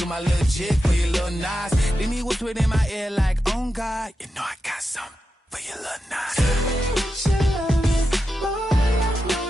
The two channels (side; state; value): both; normal; correlation 0.89